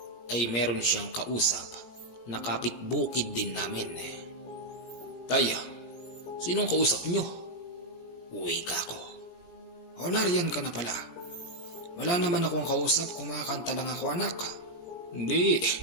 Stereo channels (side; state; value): right; late; 17 ms